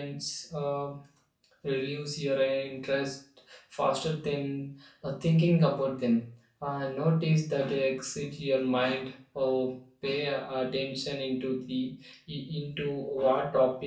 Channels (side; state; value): both; identical; correlation 1.00